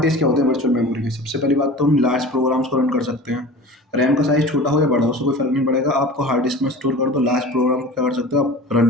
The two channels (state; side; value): normal; both; correlation 0.38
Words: क्या होते हैं वर्चुअल मेमोरी के, सबसे पहली बात तो हम लार्ज प्रोग्राम्स को रन कर सकते हैं। रैम का साइज़ छोटा हो या बड़ा हो, उससे कोई फ़र्क नहीं पड़ेगा, आपको हार्ड डिस्क में स्टोर कर दो, लार्ज प्रोग्राम को क्या कर सकते हो, आप रन